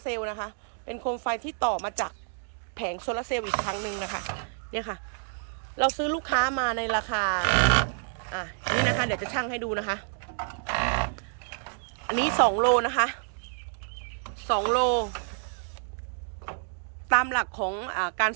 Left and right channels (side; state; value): left; silent; digital silence